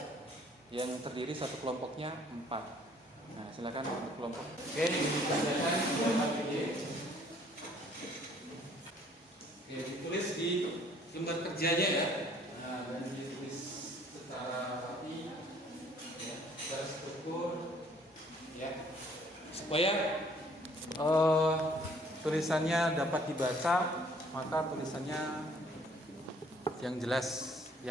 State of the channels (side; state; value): both; normal; correlation 0.59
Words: yang terdiri satu kelompoknya 4. Nah, silakan untuk kelompok. Oke, dibacakan ini. Oke, ditulis di lembar kerjanya ya. Nah, dan ditulis secara rapi ya, secara struktur ya, supaya tulisannya dapat dibaca, maka tulisannya yang jelas,